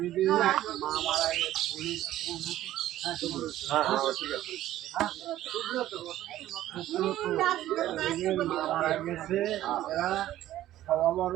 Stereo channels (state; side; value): quieter; left; 13.7 dB